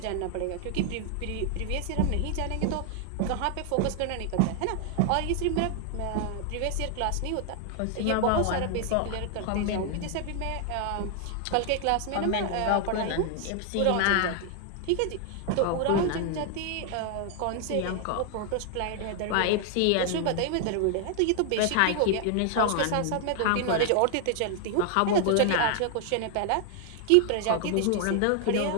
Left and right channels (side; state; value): both; different; correlation 0.00